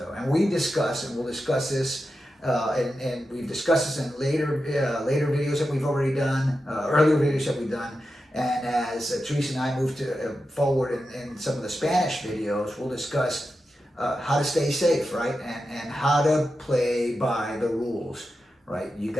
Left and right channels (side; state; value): both; normal; correlation 0.90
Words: and we discuss, and we'll discuss this, and we've discussed this in later videos that we've already done, earlier videos that we've done. And as Teresa and I move to forward in some of the Spanish videos, we'll discuss how to stay safe, right, and how to play by the rules, right. You